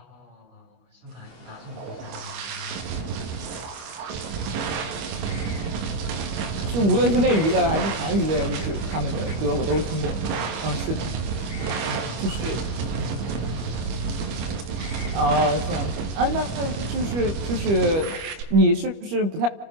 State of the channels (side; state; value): left; late; 25 ms